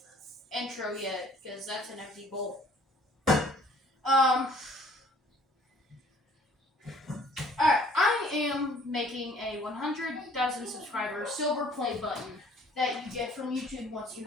intro yet because that's an empty bowl. Alright, I am making a 100,000 subscriber silver play button that you get from YouTube once you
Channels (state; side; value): normal; both; correlation 0.56